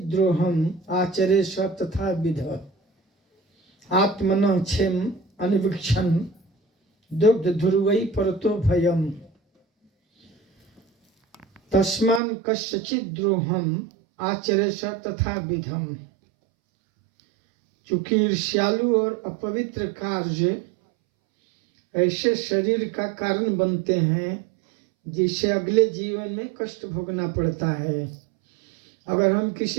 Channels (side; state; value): left; drops out; at 12.2 s